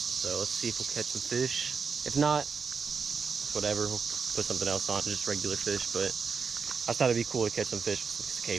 let's see if we'll catch some fish. If not, whatever, we'll put something else on, just regular fish. But I thought it'd be cool to catch some fish with some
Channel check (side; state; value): left; quieter; 5.6 dB